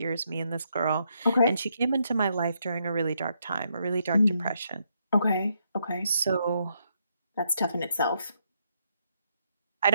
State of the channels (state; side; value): inverted; both; correlation -0.77